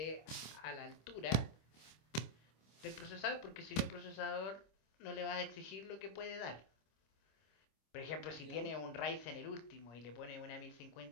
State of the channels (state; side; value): late; right; 26 ms